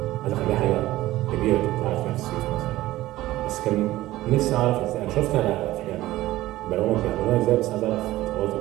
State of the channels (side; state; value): left; quieter; 16.4 dB